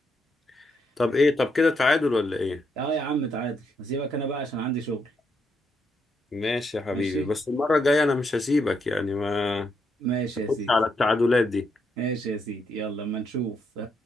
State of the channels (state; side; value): normal; both; correlation 0.77